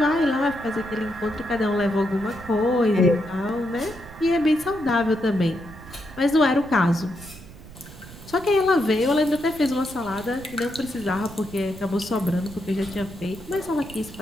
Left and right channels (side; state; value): right; noise; rumble, 17 dB below the sound